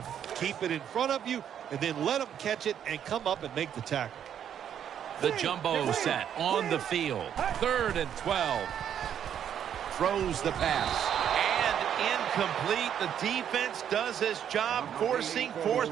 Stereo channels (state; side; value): quieter; left; 9.3 dB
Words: Keep it in front of you, and then let them catch it and come up and make the tackle. The jumbo set on the field. 3rd and 12. Throws the pass. And incomplete. The defense does his job, forcing